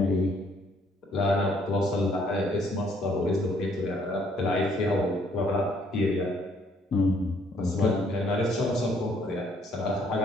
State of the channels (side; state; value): both; normal; correlation 0.66